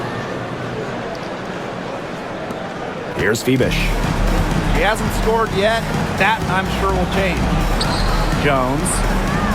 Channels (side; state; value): both; identical; correlation 1.00